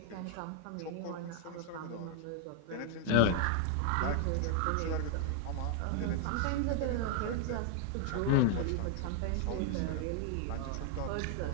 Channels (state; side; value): different; both; correlation 0.00